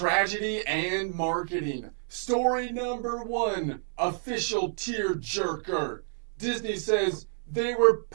and marketing. Story number 1, official tearjerker. Disney says they were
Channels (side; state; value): left; silent; 59 dB below the other